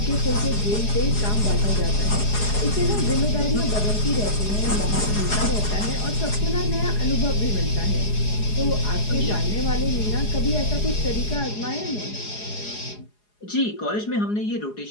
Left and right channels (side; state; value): right; late; 4.8 ms